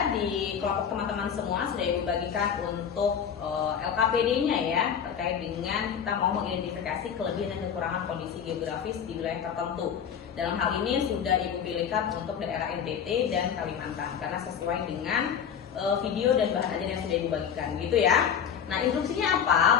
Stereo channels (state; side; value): quieter; right; 7.9 dB